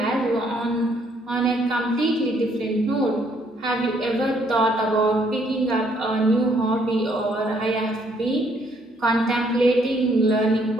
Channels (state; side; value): normal; both; correlation 0.68